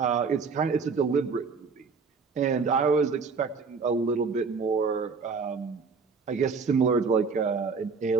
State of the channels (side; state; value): left; quieter; 5.0 dB